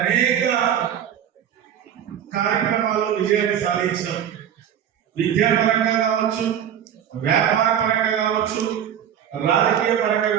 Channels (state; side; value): quieter; left; 9.5 dB